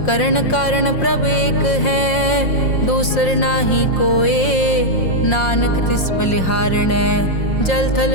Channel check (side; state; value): right; late; 5.6 ms